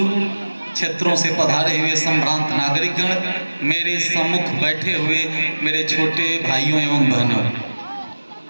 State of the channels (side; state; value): both; inverted; correlation -1.00